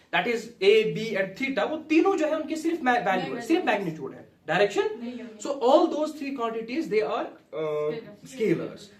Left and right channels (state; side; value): identical; both; correlation 1.00